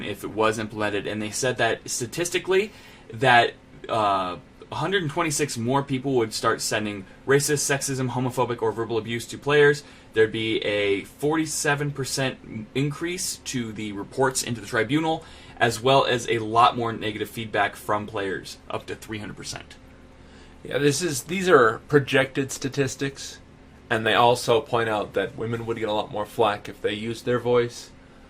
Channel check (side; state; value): both; identical; correlation 1.00